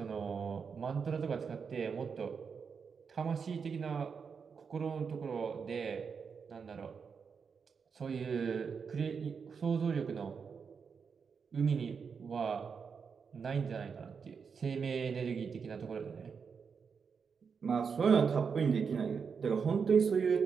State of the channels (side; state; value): left; quieter; 6.0 dB